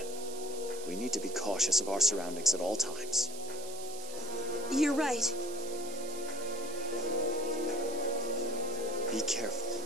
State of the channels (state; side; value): noise; right; hiss, 12 dB below the sound